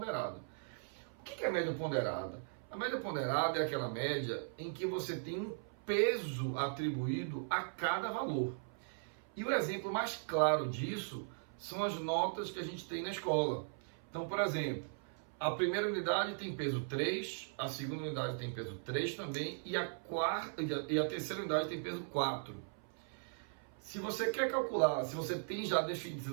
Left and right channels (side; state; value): left; silent; 52 dB below the other